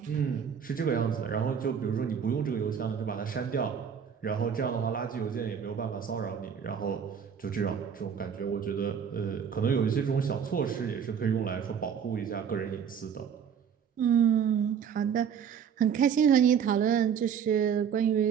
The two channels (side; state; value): left; quieter; 7.6 dB